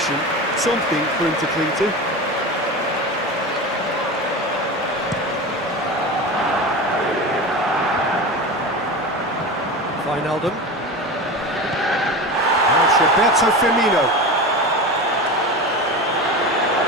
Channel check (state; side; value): normal; both; correlation 0.27